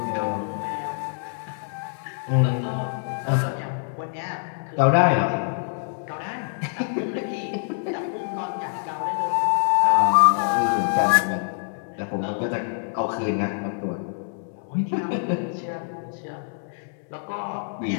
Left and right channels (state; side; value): silent; right; digital silence